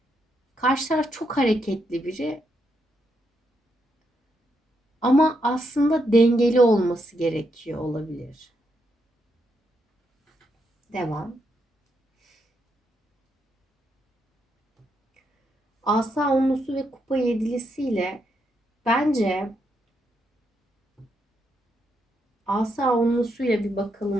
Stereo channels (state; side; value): normal; both; correlation 0.80